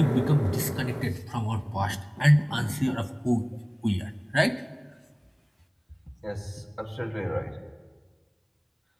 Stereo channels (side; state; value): both; identical; correlation 1.00